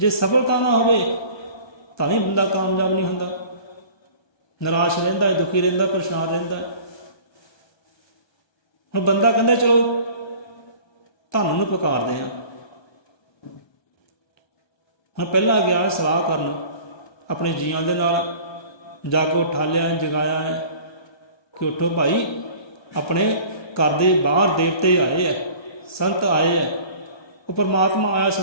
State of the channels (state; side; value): late; right; 1.3 ms